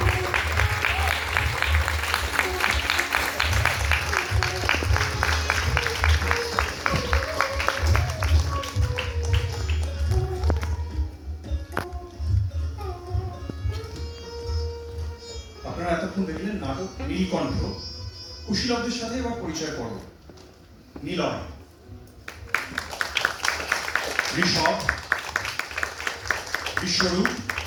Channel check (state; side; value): identical; both; correlation 1.00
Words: আপনারা এতক্ষণ দেখলেন নাটক নীলকণ্ঠ। কুশীলবদের সাথে এবার পরিচয় পর্ব। নিলয়, ঋষভ, বিশ্বরূপ,